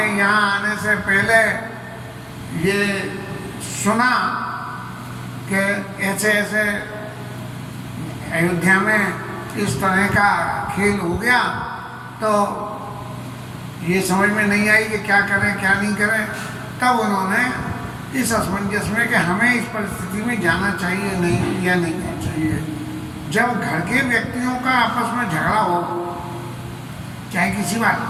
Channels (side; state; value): both; identical; correlation 1.00